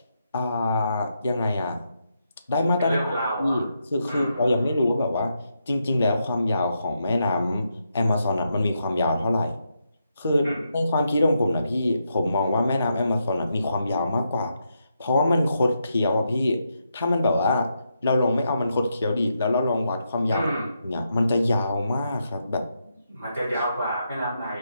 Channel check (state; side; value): inverted; both; correlation -0.82